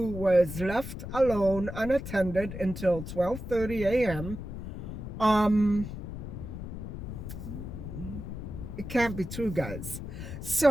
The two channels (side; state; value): left; noise; rumble, 8 dB below the sound